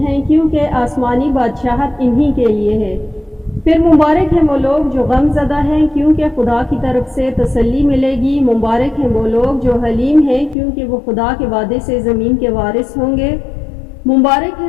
ہیں، کیونکہ آسمانی بادشاہت انہی کے لیے ہے۔ پھر مبارک ہیں وہ لوگ جو غم زدہ ہیں، کیونکہ خدا کی طرف سے تسلی ملے گی۔ مبارک ہیں وہ لوگ جو حلیم ہیں، کیونکہ وہ خدا کے وعدے سے زمین کے وارث ہوں گے۔ مبارک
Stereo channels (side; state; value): right; drops out; at 10.6 s